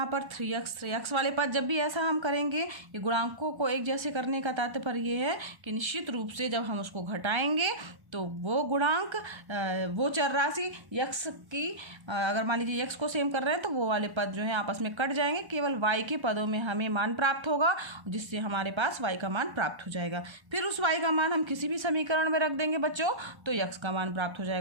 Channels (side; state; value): left; late; 1.1 ms